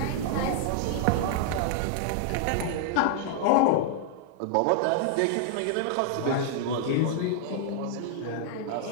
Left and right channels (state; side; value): different; both; correlation -0.01